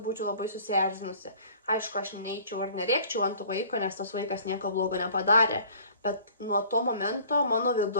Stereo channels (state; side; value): inverted; both; correlation -0.50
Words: būčiau labai susierzinusi. Aišku, aš neeičiau ir nerėkčiau ant vaiko, nes tas vaikas nieko blogo nepadarė, bet nuo to momento mano